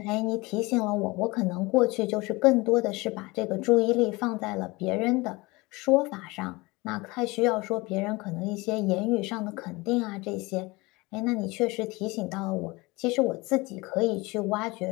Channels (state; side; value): quieter; right; 23.4 dB